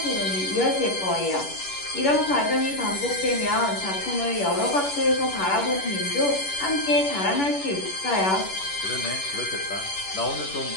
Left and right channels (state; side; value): late; right; 11 ms